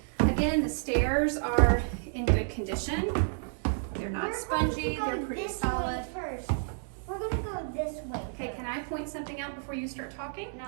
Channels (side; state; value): left; silent; 57 dB below the other